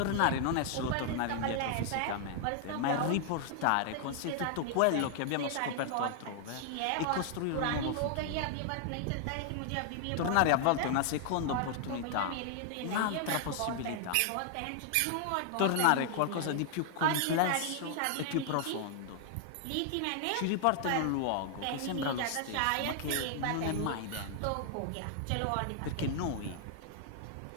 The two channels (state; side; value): different; both; correlation 0.00